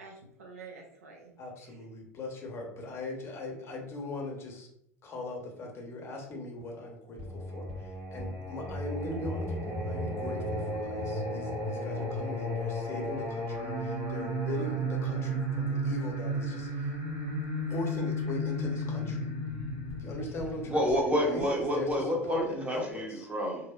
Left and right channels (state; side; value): normal; both; correlation 0.30